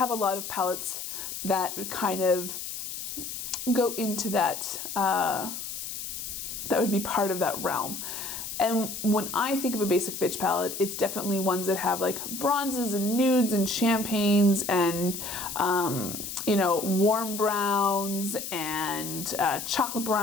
a lot of palettes that kind of go into that, that would be part of that realm. And when I think of a basic bitch palette, it's definitely ones that have like bronzes and nudes and champagnes and, you know, warm browns and chocolate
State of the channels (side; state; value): left; noise; hiss, 7 dB below the sound